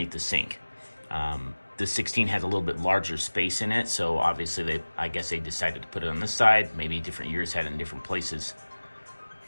the sink. The 16 has a little bit larger space in it, so obviously I guess they decided to put it on this side. Maybe different years had it in different places.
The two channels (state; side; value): inverted; both; correlation -1.00